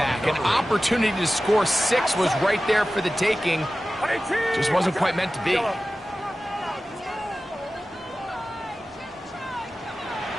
An opportunity to score 6 was right there for the taking. Just wasn't quite meant to be.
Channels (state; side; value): normal; both; correlation 0.95